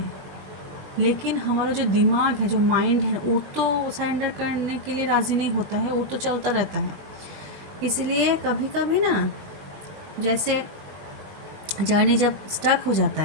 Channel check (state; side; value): late; left; 20 ms